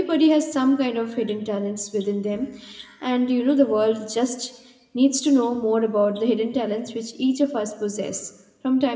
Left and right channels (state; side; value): identical; both; correlation 1.00